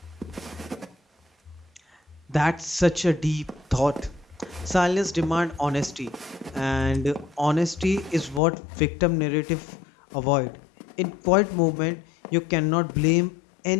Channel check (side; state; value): right; drops out; at 8.4 s